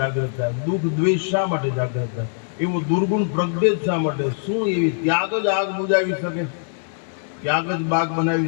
થાય, દુઃખ દ્વેષ શા માટે જાગૃત થાય, એવો દુર્ગુણ પ્રજ્ઞેત શા માટે? શું એવી ત્યાગ જ આગ બુજાવી શકે, ત્યાગ જ બાગ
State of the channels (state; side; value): silent; right; digital silence